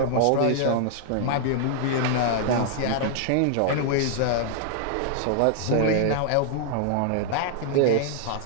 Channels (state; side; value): different; both; correlation -0.01